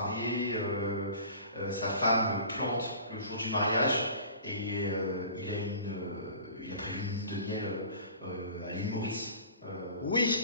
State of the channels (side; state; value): both; inverted; correlation -0.43